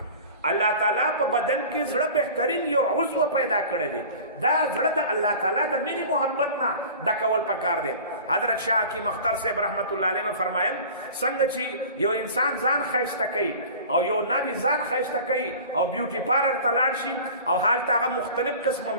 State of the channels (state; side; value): inverted; both; correlation -0.40